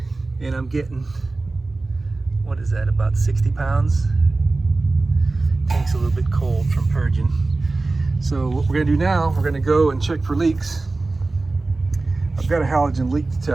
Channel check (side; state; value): left; quieter; 3.4 dB